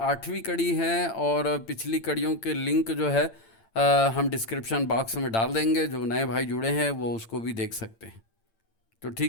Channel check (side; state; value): right; late; 8.9 ms